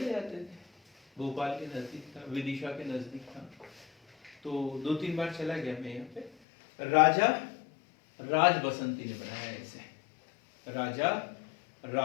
जाते थे, भोपाल के नजदीक था, विदिशा के नजदीक था, तो 2-3 बार चला गया मैं यहाँ पे। राजा राज बसंती ने बनाया है इसे, राजा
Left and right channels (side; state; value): right; drops out; at 6.3 s